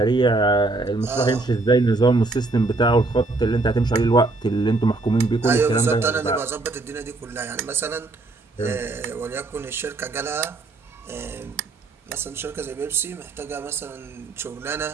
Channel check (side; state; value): left; quieter; 3.3 dB